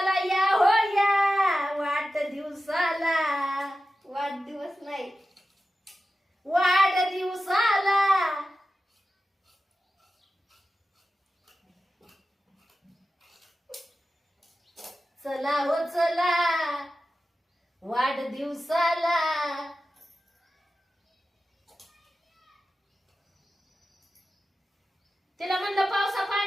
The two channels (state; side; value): normal; both; correlation 0.93